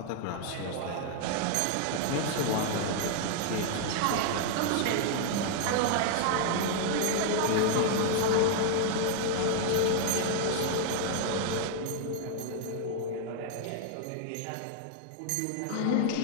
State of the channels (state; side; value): different; both; correlation 0.00